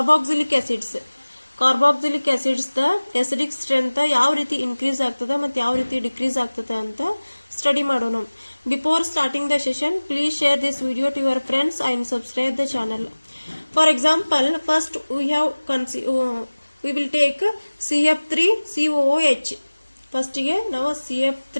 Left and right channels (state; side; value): inverted; both; correlation -1.00